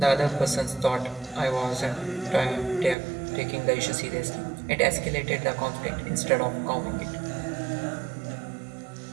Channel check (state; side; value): drops out; left; at 3.0 s